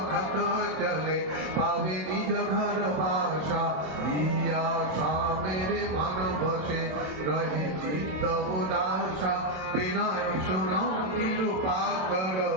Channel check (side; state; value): left; late; 27 ms